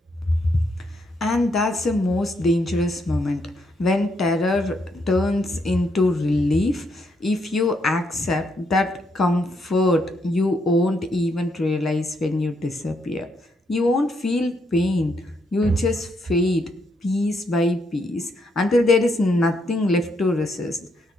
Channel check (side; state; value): both; normal; correlation 0.76